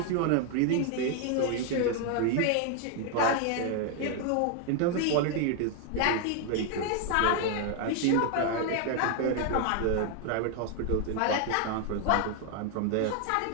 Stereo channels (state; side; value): different; both; correlation 0.00